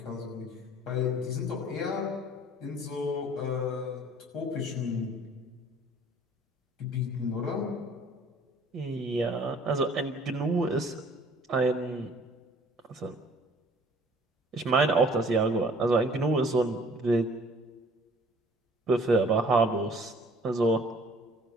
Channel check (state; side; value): normal; both; correlation 0.54